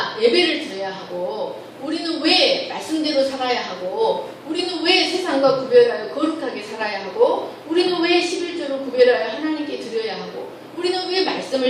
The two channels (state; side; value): identical; both; correlation 1.00